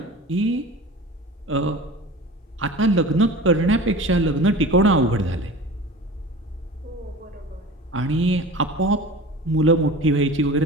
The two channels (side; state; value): both; normal; correlation 0.37